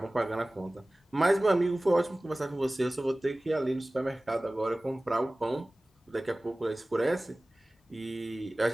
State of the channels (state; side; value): normal; both; correlation 0.98